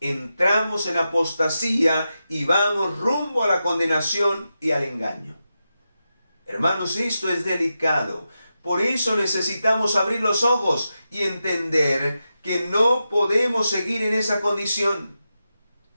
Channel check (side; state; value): both; inverted; correlation -0.90